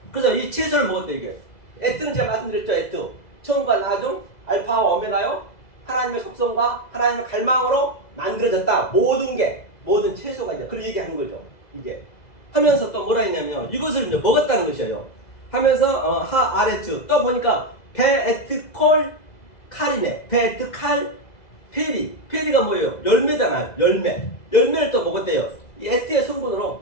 그래서 이 채소를 먹었대, 이게. 에트는 제가 말씀드렸죠, 에트. 처음과 나중, 알파와 오메가요. 하나님의 속성과 하나님의 갈망으로 만들어졌다. 모든 채소가 이제 그런 얘기하는 거죠. 이게. 하면서 또 뭐라 했냐면요. 이것을 이제 먹었다는 것이에요. 하면서, 아레트. 또 보니까, 베에트콜 칼이네. 베에트칼 페리. 페리가 뭐예요? 열매잖아요. 열매를 또 먹었대요. 이 에트의 성분으로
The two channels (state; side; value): late; right; 2.0 ms